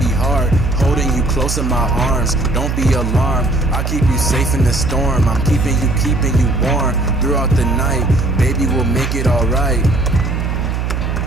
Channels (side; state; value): right; noise; hum, 1 dB below the sound